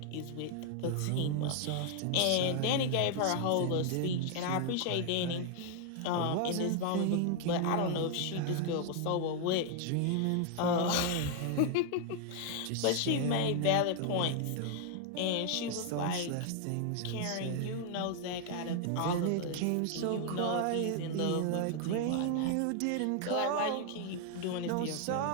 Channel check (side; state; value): both; different; correlation 0.00